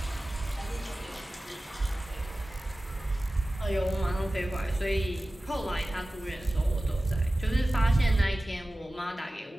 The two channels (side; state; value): both; normal; correlation 0.96